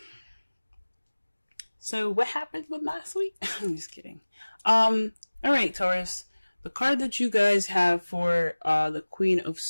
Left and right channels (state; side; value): inverted; both; correlation -1.00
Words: So what happened with last week? I'm just kidding. All right, Taurus. The card that you guys have for the Queen of